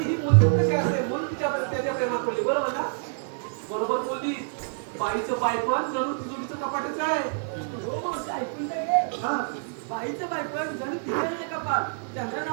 ही मुलगी कशी असते म्हणून त्याच्या प्रेमात पडली बरोबर ना बरोबर बोलली बाईचं बायपण जणू तिजोरीचं कपाटच आहे हा बाईचं बायपण जणू तिथे कपाट चंद्रा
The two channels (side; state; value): left; silent; 59 dB below the other